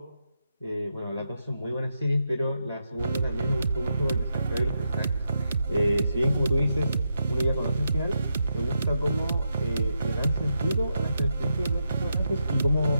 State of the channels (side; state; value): both; inverted; correlation -0.84